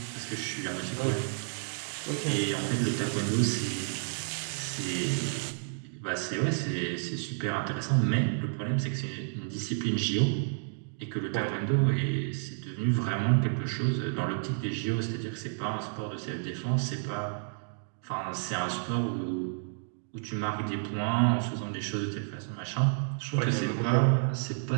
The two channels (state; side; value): silent; left; digital silence